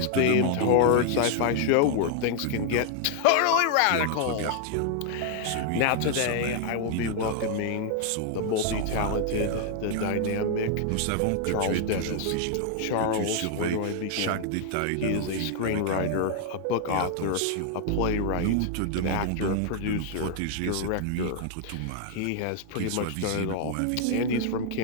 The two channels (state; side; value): different; both; correlation 0.00